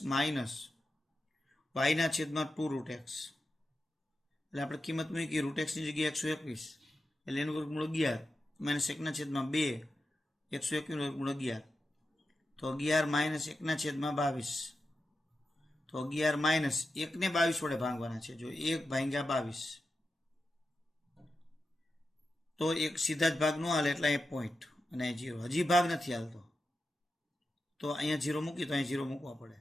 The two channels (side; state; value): both; normal; correlation 0.90